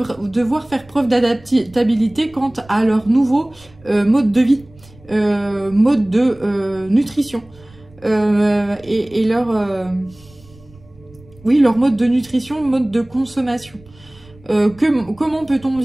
faire preuve d'adaptabilité quant à leur nouveau mode de vie, mode de nutrition. Et oui, leur mode de nutrition, mode de consommation. Comment peut-on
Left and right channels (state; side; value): noise; right; rumble, 25 dB below the sound